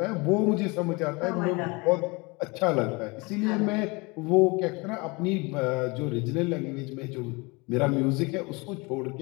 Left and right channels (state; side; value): quieter; right; 26.9 dB